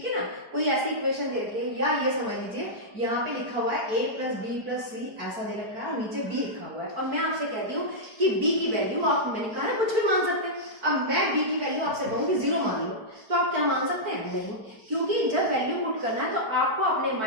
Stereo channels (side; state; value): left; late; 4.5 ms